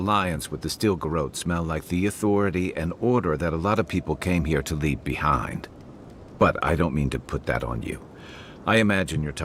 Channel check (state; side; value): identical; both; correlation 1.00